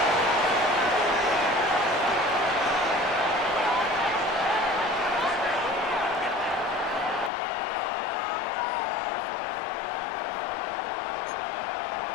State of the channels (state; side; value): drops out; right; at 7.3 s